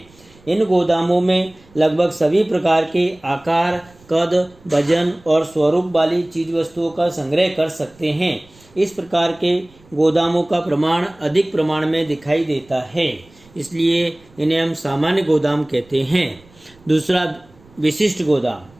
इन गोदामों में लगभग सभी प्रकार के आकार, कद, वजन और स्वरूप वाली चीज वस्तुओं का संग्रह कर सकते हैं। इस प्रकार के गोदामों का प्रमाण अधिक प्रमाण में दिखाई देता है, इसलिए इन्हें हम सामान्य गोदाम कहते हैं। दूसरा विशिष्ट गोदाम,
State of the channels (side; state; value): right; noise; rumble, 28 dB below the sound